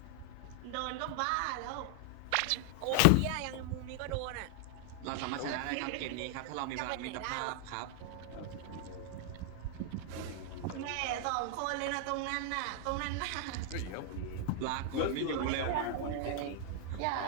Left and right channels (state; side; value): different; both; correlation 0.00